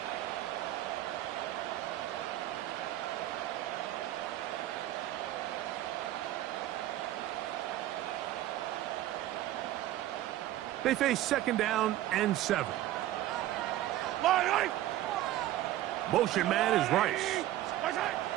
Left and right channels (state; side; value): quieter; left; 14.2 dB